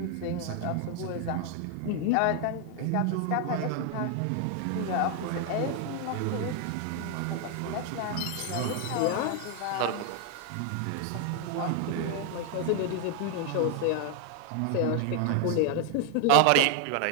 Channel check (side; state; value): both; different; correlation 0.00